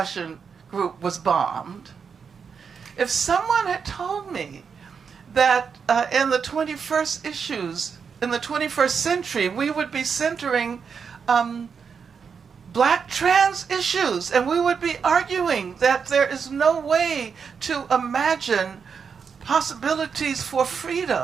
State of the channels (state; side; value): quieter; left; 6.2 dB